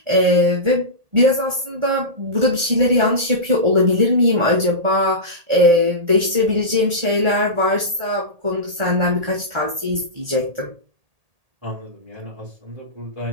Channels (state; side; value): late; left; 1.8 ms